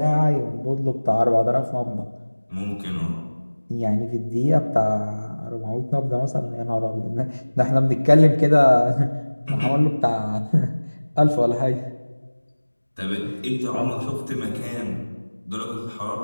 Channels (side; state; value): both; inverted; correlation -1.00